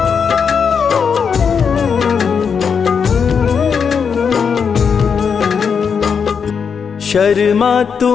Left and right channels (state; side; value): quieter; right; 6.4 dB